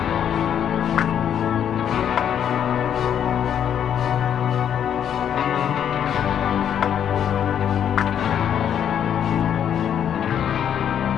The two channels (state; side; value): quieter; right; 9.1 dB